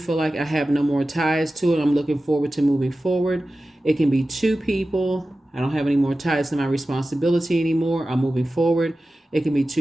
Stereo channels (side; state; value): both; normal; correlation 0.95